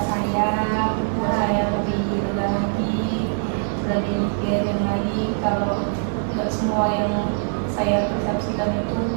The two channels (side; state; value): left; silent; 64 dB below the other